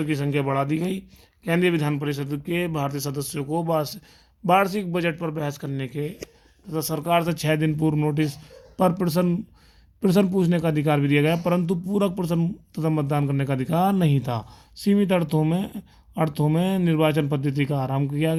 की संख्या बढ़ा दी गई। केंद्रीय विधान परिषद के भारतीय सदस्यों को वार्षिक बजट पर बहस करने के तथा सरकार से 6 दिन पूर्व नोटिस पर प्रश्न पूछने का अधिकार भी दिया गया, परंतु पूरक प्रश्न तथा मतदान करने का अधिकार नहीं था। सीमित अर्थों में निर्वाचन पद्धति का आरंभ किया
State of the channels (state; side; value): identical; both; correlation 1.00